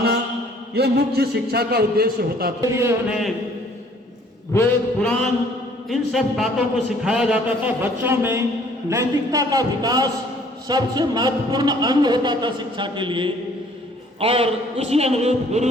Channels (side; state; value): both; normal; correlation 0.58